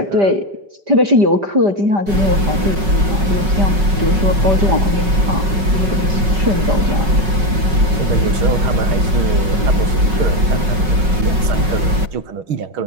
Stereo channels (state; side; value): late; left; 5.4 ms